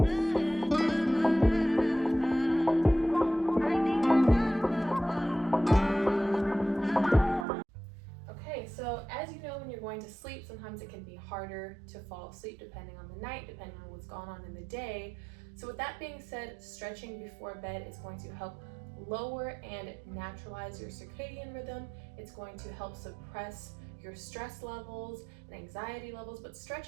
Okay, so as you know, when you're going to sleep, sometimes it can be harder to fall asleep depending on the night, depending on what's gone on in the day. So with that being said, stretching before bed is going to help lower and naturalize your circadian rhythm. It's going to help suppress your stress levels and anxiety levels, but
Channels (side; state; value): left; drops out; at 7.5 s